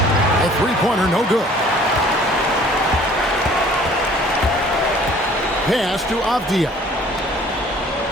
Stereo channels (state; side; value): normal; both; correlation 0.53